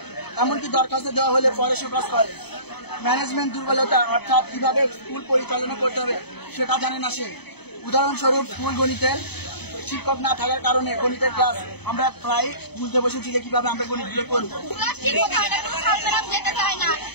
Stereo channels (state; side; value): late; right; 0.98 ms